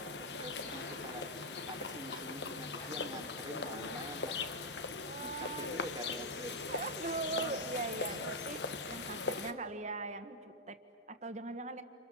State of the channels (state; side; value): normal; both; correlation -0.01